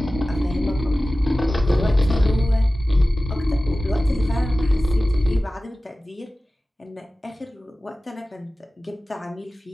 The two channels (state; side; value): normal; both; correlation 0.96